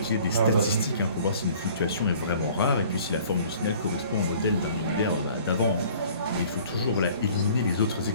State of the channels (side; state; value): both; inverted; correlation -0.52